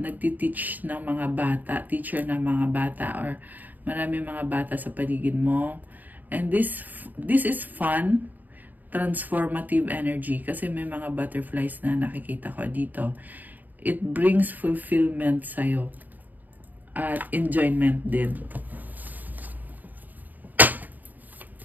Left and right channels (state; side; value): late; left; 0.085 ms